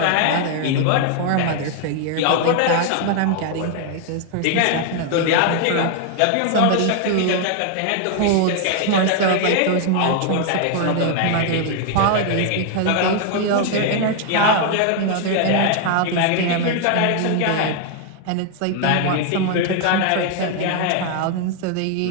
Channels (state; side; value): different; both; correlation 0.00